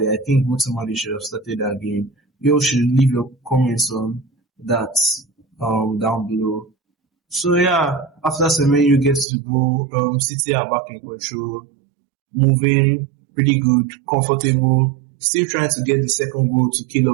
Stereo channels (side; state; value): left; drops out; at 9.2 s